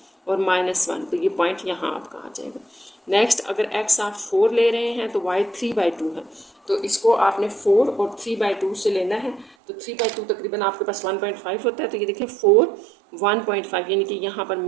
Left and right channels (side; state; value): left; drops out; at 9.6 s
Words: और -1, तो ये पॉइंट यहाँ आपका आ जाएगा। नेक्स्ट अगर x आप 4 ले रहे हैं तो y 3/2 है, तो इसको आपने 4 और 3/2 से लेना है, तो 3/2 तकरीबन आपके पास 1.5 होता है, तो ये देखिए 4 1.5, यानी कि यहाँ पर